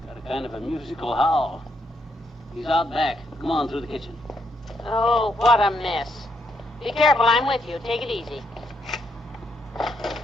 Got a kind of a musical howl. He's out back. Come on through the kitchen. Oh, what a mess. Be careful, I'm with you. Take it easy.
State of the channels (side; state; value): both; normal; correlation 0.77